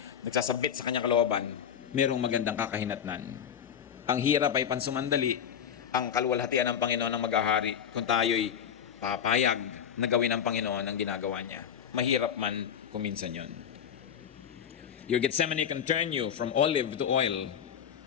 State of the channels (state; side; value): quieter; right; 8.4 dB